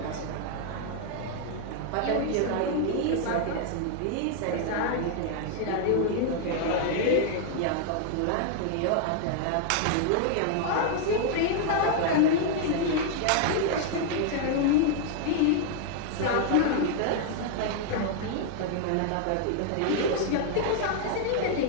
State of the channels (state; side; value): different; both; correlation 0.00